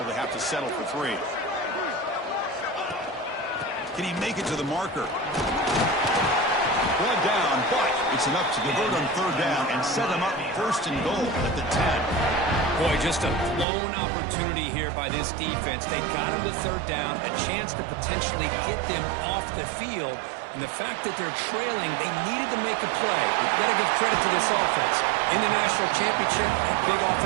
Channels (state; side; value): drops out; left; at 13.7 s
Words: they have to settle for 3? Can he make it to the marker? Brought down, but it's enough to convert on third down and set him up first and goal at the 10. Boy, just a blown opportunity here by this defense. They got him to third down, a chance to potentially get them off the field. And the fact that they're trailing, they needed to make a play. You've got to give credit to this offense. In the national championship, that big